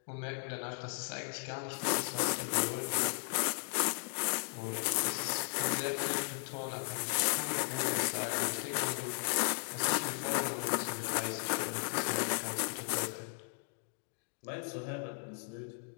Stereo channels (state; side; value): silent; right; 54 dB below the other